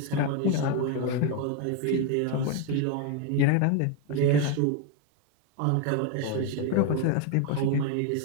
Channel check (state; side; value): different; both; correlation 0.01